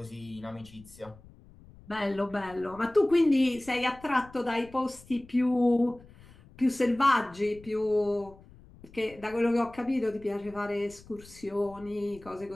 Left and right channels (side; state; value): left; noise; rumble, 22 dB below the sound